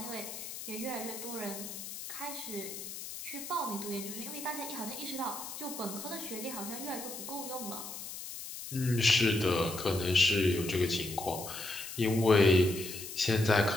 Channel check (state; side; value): noise; left; hiss, 9 dB below the sound